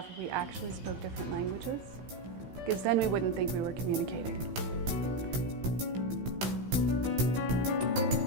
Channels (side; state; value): left; late; 16 ms